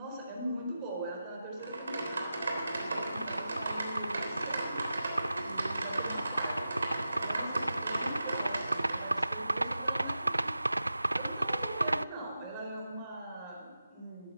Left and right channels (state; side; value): inverted; both; correlation -0.91